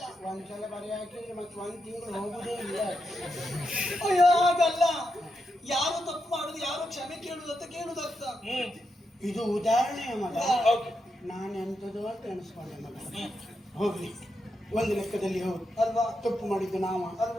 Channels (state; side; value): normal; both; correlation 0.85